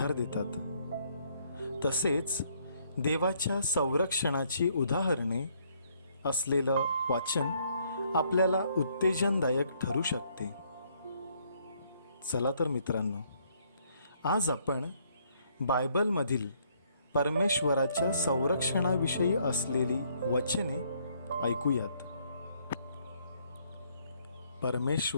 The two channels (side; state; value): both; inverted; correlation -0.68